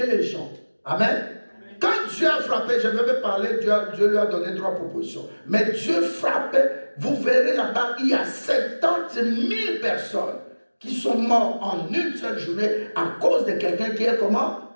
les gens. Amen. Quand Dieu a frappé, je vais me parler, Dieu lui a donné 3 propositions. Mais Dieu frappait, vous verrez là-bas, il y a 70 000 personnes qui sont mortes en une seule journée à cause de quelqu'un qui est comment?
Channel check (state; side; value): inverted; both; correlation -1.00